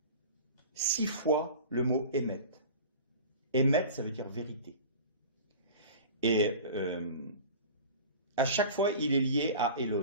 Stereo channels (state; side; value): inverted; both; correlation -0.37